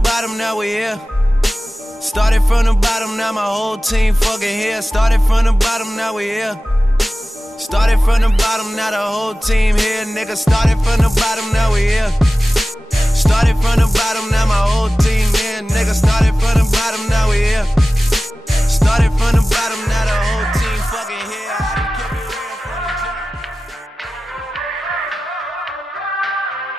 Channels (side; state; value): both; normal; correlation 0.96